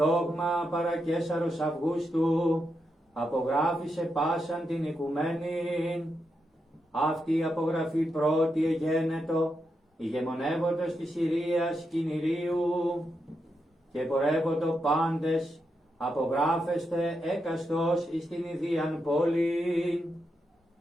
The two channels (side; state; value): both; normal; correlation 0.84